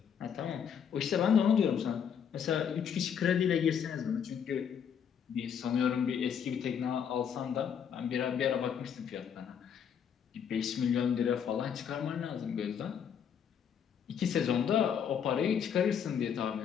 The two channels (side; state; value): right; quieter; 7.9 dB